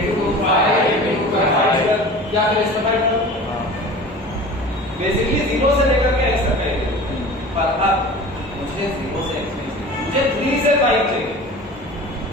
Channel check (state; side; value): normal; both; correlation 0.38